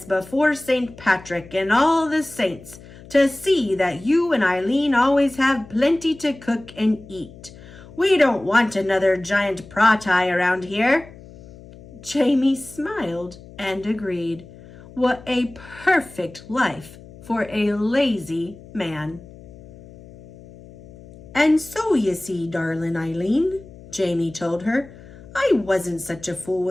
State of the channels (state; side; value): noise; left; hum, 19 dB below the sound